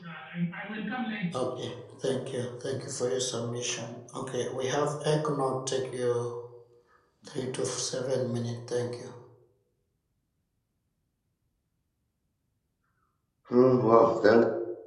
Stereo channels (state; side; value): identical; both; correlation 1.00